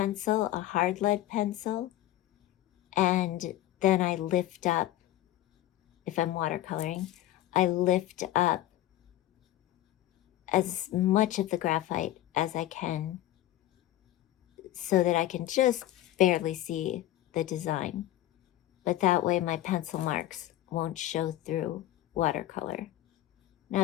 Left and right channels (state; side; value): quieter; right; 14.1 dB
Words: a hard lead pencil, and then I lift up, if I'm watercoloring, I lift up as much of the graphite as I can so that I can just barely see the design. But that way my pencil marks won't show through watercolor. Now,